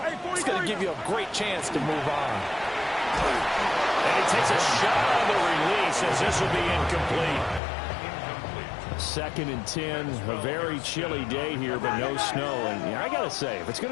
it's going to give you a great chance to move on. And he takes a shot on the release as this will be incomplete. 2nd and 10, a very chilly day here, but no snow. And I got to say, if it's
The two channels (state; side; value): drops out; right; at 7.6 s